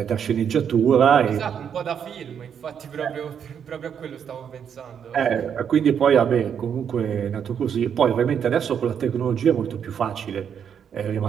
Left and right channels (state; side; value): quieter; left; 8.0 dB